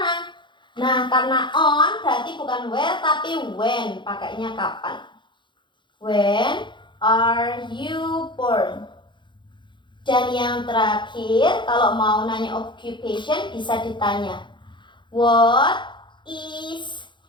Nah, karena on berarti bukan where tapi when, pakainya kapan. When are you born? Dan yang terakhir, kalau mau nanya occupation bisa ditanya, what is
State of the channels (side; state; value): right; late; 0.23 ms